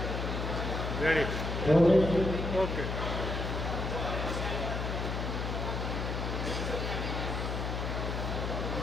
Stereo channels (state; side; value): noise; left; hum, 2 dB below the sound